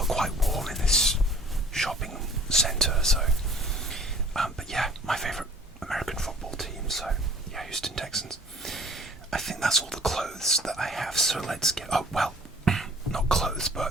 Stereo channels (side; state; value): both; normal; correlation 0.52